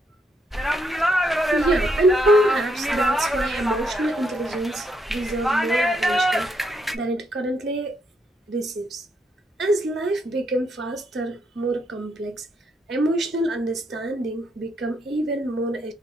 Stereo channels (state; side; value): normal; both; correlation 0.76